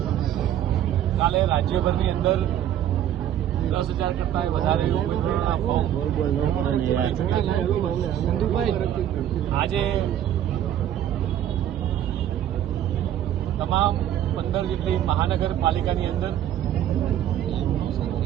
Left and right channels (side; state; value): left; quieter; 11.2 dB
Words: કાલે રાજ્યભરની અંદર 10,000 કરતા વધારે ઉમેદવારોના ફોર્મ આજે તમામ 15 જેટલી મહાનગરપાલિકાની અંદર